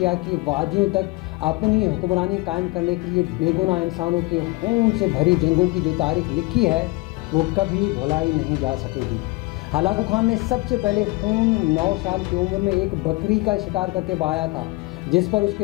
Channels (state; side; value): quieter; right; 23.0 dB